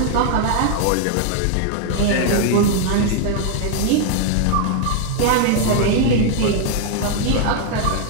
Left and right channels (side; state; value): both; different; correlation 0.00